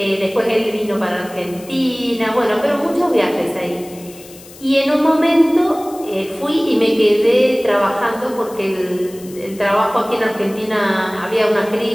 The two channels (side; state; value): left; noise; hiss, 20 dB below the sound